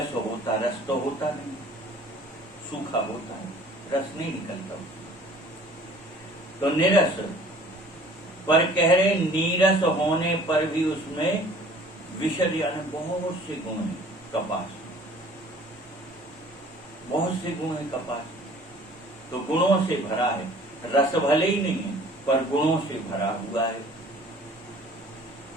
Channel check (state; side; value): normal; both; correlation 0.51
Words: होता, रस तो होता नहीं, सूखा होता है, रस नहीं निकलता। तो निरस, पर कह रहे नीरस होने पर भी उसमें विशद यानी बहुत से गुण हैं। कपास बहुत से गुण है, कपास तो गुणों से भरा है। रस भले ही नहीं है पर गुणों से भरा हुआ है।